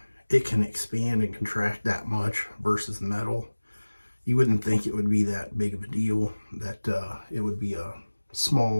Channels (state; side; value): inverted; both; correlation -1.00